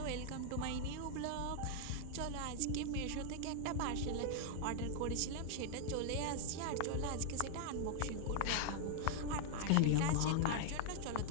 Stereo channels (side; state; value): both; different; correlation 0.00